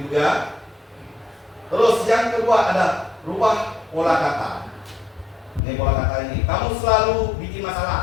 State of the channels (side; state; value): right; drops out; at 5.6 s